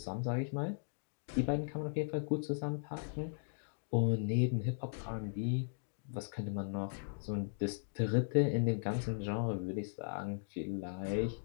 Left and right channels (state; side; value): silent; right; digital silence